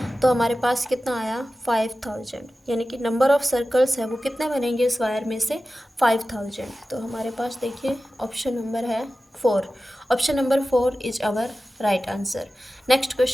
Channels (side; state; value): both; normal; correlation 0.94